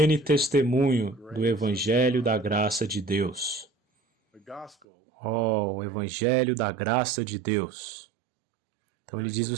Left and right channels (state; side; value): drops out; left; at 4.8 s